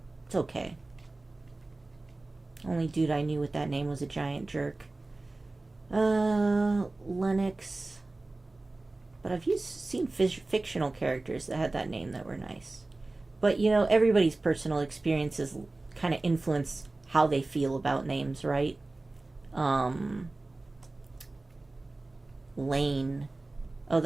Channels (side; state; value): left; quieter; 3.1 dB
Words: It's okay. Only dude I knew with that name was a giant jerk. Lennox. But I've seen fictional characters that had that name that were nice. But, you know, everybody's personal experiences kind of influence how they feel about names, right? Lane. Oh,